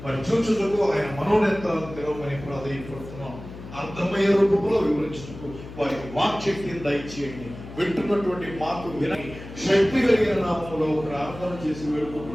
చూచుటకు ఆయన మనోనేత్రాలను తెరవమని ప్రాధాన్యపడుతున్నాం. అర్థమయ్యే రూపంలో వివరించుటకు వారికి వాక్శక్తిని దయచేయండి. వింటున్నటువంటి మాకు విని శక్తి కలిగిన నామంలో ప్రార్థన చేసి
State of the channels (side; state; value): left; noise; hum, 14 dB below the sound